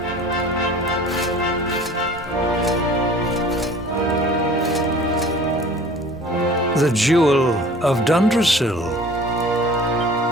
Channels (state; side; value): normal; both; correlation 0.46